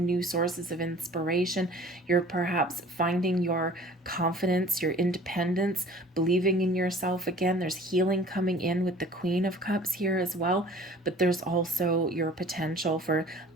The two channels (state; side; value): normal; both; correlation 0.48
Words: new sources of inspiration. You're perhaps finding your confidence, your independence, believing in yourself again. There's healing coming in with the Queen of Cups here as well. But there's also your potential for